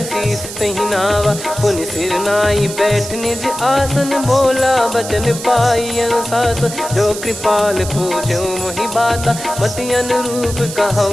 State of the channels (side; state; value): right; noise; hiss, 10 dB below the sound